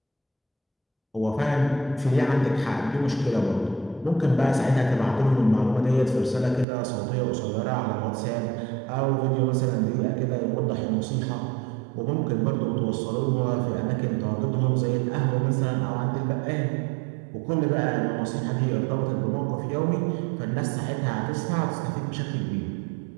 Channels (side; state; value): left; drops out; at 6.7 s